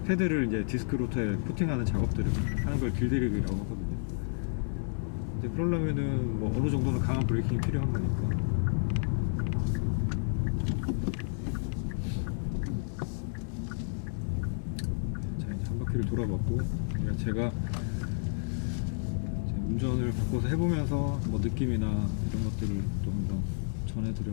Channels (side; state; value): right; silent; digital silence